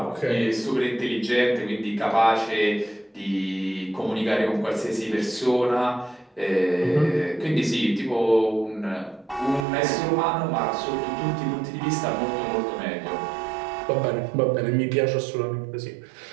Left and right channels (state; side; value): drops out; left; at 9.7 s